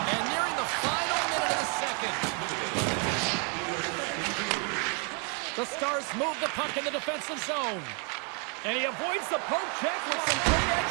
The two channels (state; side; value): quieter; left; 37.5 dB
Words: And nearing the final minute of the second. The Stars move the puck in the defensive zone. And he avoids the poke check with some great